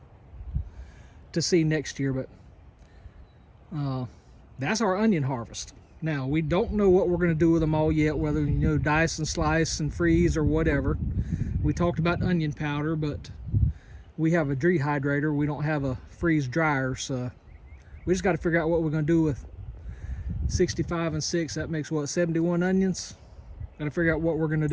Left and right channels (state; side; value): identical; both; correlation 1.00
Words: see next year. But that's our onion harvest. Now we don't know what we're going to do with them all yet, whether dice and slice and freeze or whatever. We talked about onion powder, but we have a dehydrator. We don't have a freeze dryer, so we just got to figure out what we're going to do with 65 and 6. That makes what, 71 onions? Got to figure out what we're going to